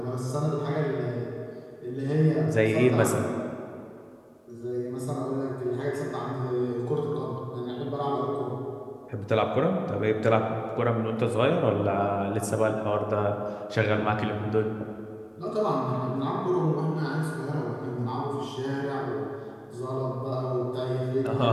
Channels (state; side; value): identical; both; correlation 1.00